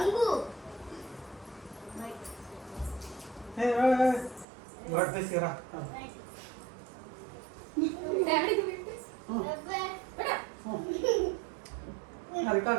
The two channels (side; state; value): left; drops out; at 4.5 s